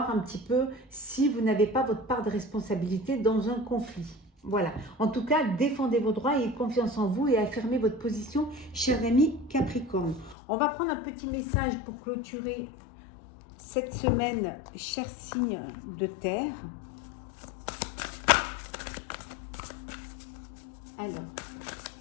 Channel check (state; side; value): drops out; right; at 10.4 s